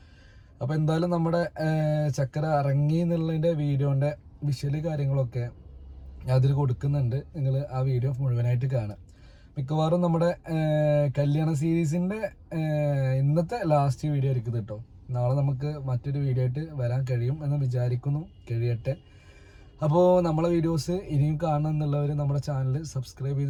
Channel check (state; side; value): identical; both; correlation 1.00